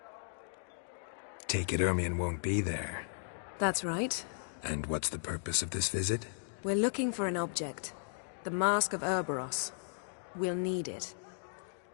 Take it Ermien won't be there. That's right. And what's the purpose of this visit? We're looking for an object. The Mask of Urboros. We'll need it.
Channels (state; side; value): silent; right; digital silence